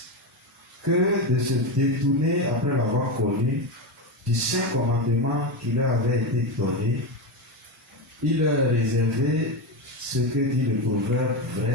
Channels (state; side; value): normal; both; correlation 0.14